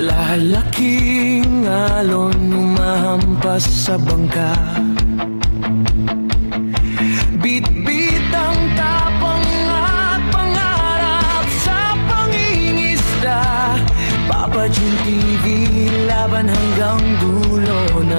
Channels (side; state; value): both; inverted; correlation -1.00